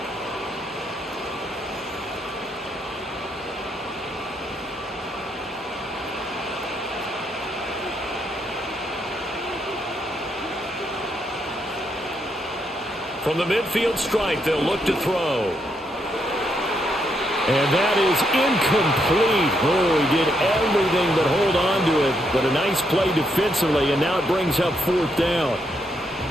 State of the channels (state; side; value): normal; both; correlation 0.77